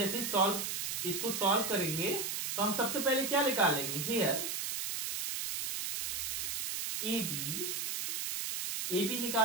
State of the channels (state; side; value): noise; right; hiss, 2 dB below the sound